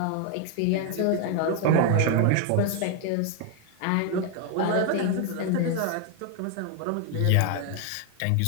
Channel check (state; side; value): different; both; correlation 0.01